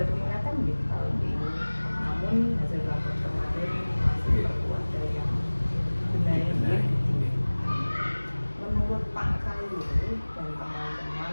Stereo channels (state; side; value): inverted; both; correlation -1.00